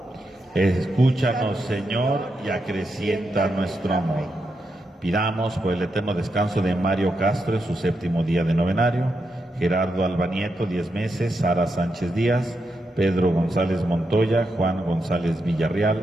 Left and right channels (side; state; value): both; normal; correlation 0.84